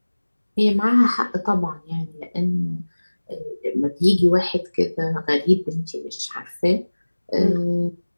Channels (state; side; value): inverted; both; correlation -1.00